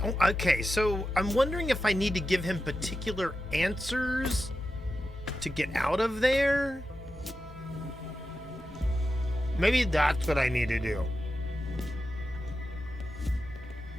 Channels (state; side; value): normal; both; correlation 0.91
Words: Okay, so I'm wondering if I need to give him particular answers to get out of there. Maybe that's what I need to do.